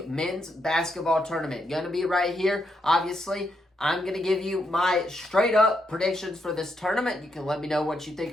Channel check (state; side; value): normal; both; correlation 0.80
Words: Men's Basketball Tournament. Going to be right here. Obviously, I'm going to give you my straight up predictions for this tournament. You can let me know what you think